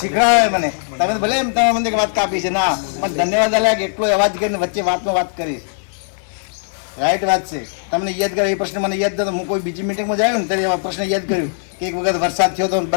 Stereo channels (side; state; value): right; silent; 58 dB below the other